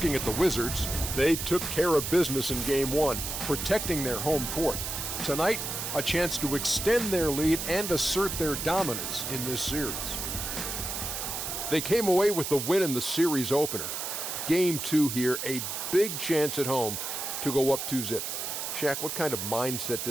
at the Wizards, they took care of business in game one, protecting their home court. Tonight, a chance to extend their lead and assert their dominance in this series. They came away with the win in the series opener. Game two here, a big chance at home to go up 2-0. Shaq, what kind of mindset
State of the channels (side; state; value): right; noise; hiss, 4 dB below the sound